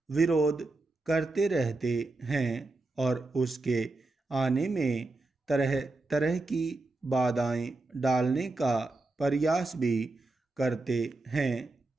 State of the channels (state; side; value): quieter; left; 3.2 dB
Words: विरोध करते रहते हैं और उसके आने में तरह तरह की बाधाएं डालने का प्रयास भी करते हैं।